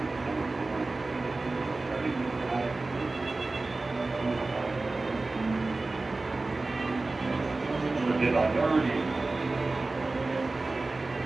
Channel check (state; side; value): quieter; left; 3.3 dB